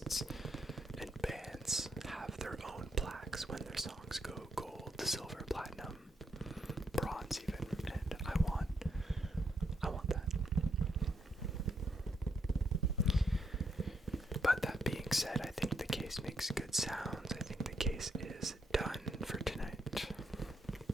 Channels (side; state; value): both; normal; correlation 0.77